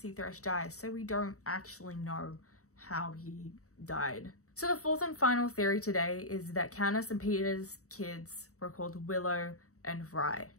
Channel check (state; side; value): late; right; 0.65 ms